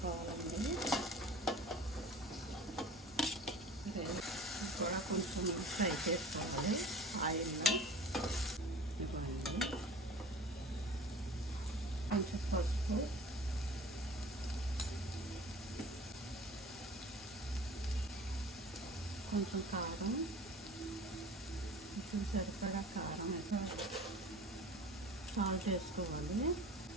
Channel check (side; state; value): both; normal; correlation 0.42